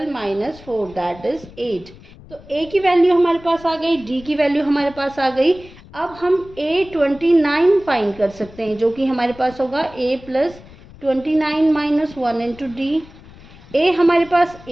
minus 4, that is 8। तो A की वैल्यू हमारे पास आ गई, D की वैल्यू हमारे पास आ गई। अब हम A29 फाइंड कर सकते हैं, जो कि हमारे पास होगा A plus 29 minus 1 into D। A हमारे पास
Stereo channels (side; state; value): left; noise; rumble, 21 dB below the sound